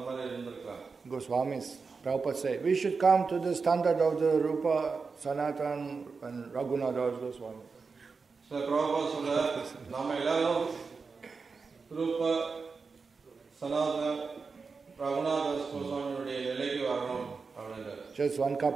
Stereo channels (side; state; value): left; quieter; 4.8 dB